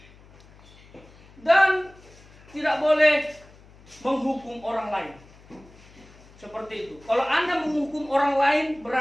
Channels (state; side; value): noise; left; hum, 24 dB below the sound